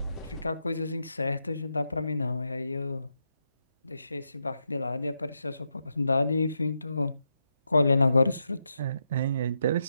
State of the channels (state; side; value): inverted; both; correlation -0.84